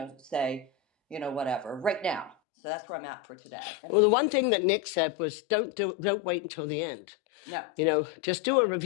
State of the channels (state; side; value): drops out; right; at 2.4 s